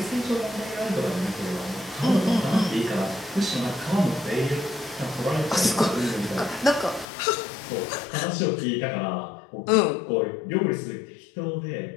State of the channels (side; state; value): right; drops out; at 7.1 s